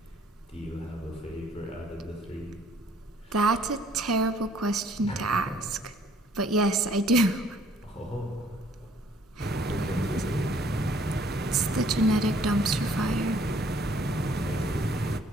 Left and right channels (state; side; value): normal; both; correlation 0.60